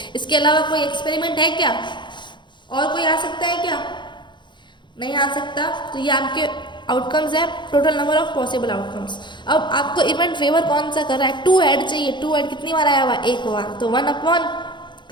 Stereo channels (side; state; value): right; late; 0.22 ms